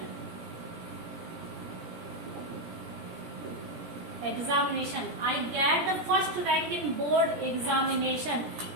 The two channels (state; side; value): late; left; 17 ms